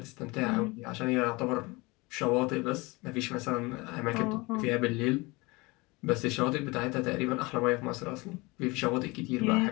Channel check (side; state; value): right; quieter; 24.4 dB